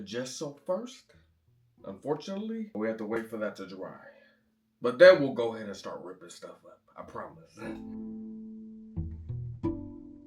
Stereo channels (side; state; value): both; identical; correlation 1.00